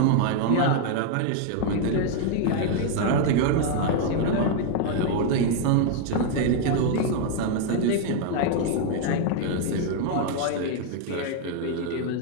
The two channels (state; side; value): different; both; correlation 0.00